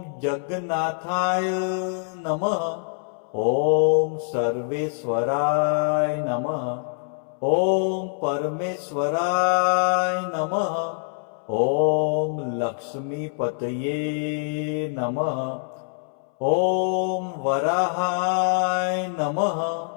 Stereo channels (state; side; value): silent; right; 62 dB below the other